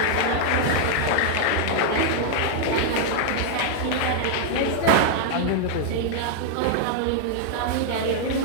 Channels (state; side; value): different; both; correlation 0.00